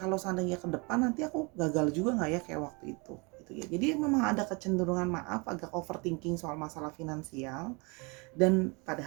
seandainya ke depan nanti aku gagal juga nggak ya kayak waktu itu gitu ya. Jadi memang ada kecenderungan agak overthinking soal masalah finansial. Dan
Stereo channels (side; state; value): left; quieter; 29.9 dB